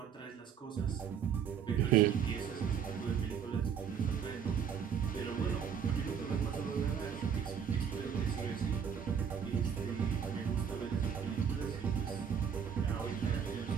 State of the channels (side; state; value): left; quieter; 7.5 dB